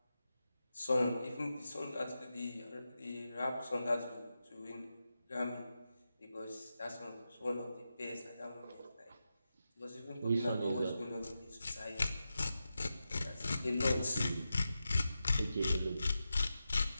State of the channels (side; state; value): both; inverted; correlation -0.90